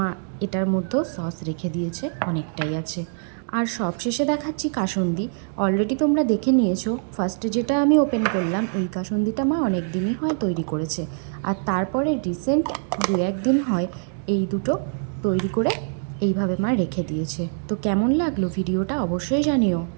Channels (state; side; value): silent; left; digital silence